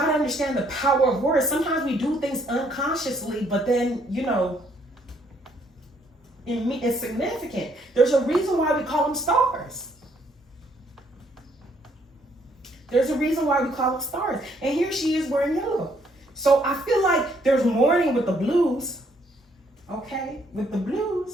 to understand the power of words. Sometimes we do things unconsciously, but then, you know, it's significant. There's a reason why we call them stars. There's a reason why we call them stars. And here she is wearing yellow. So I feel like there's mourning with the blues. Okay? With the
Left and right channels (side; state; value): both; normal; correlation 0.68